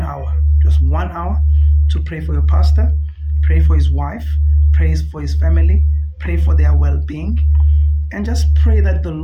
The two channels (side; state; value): both; identical; correlation 1.00